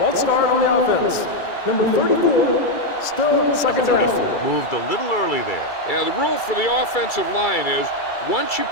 start on the offense. Number 34, still second Number down. 34 moved a little early there. Yeah, the rule for the offensive line is once you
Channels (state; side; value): late; right; 2.3 ms